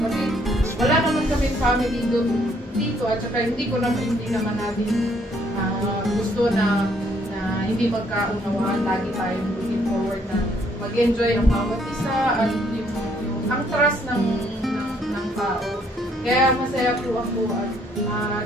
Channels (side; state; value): both; normal; correlation 0.67